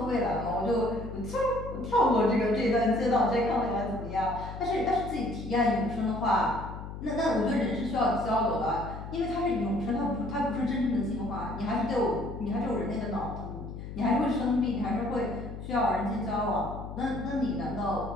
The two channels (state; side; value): noise; left; hum, 10 dB below the sound